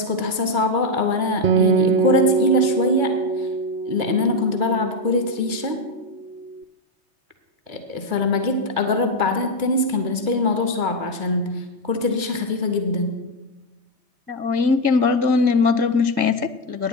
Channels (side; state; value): left; late; 2.7 ms